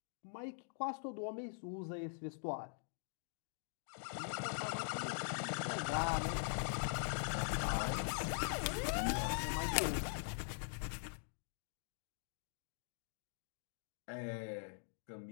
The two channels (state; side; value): silent; right; digital silence